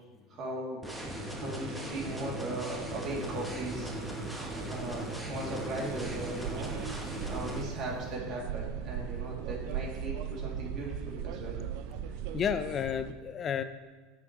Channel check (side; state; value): both; normal; correlation 0.32